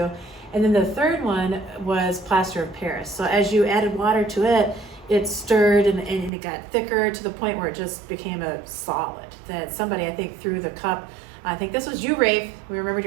And then the third one was plaster of Paris. So as you added water to it, it stirred and it got thicker to the point where it just became a solid. That somebody, I think, threw the cup, I think this was you, Rafe, we remembered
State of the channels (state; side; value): drops out; left; at 6.3 s